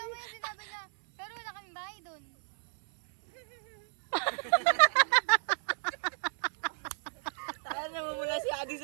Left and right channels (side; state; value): left; silent; 57 dB below the other